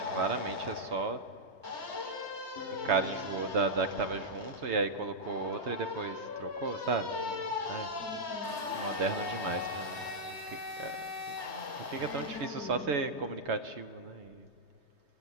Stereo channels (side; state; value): left; late; 3.2 ms